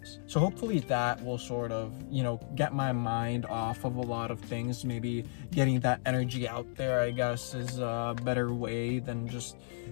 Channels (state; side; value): silent; right; digital silence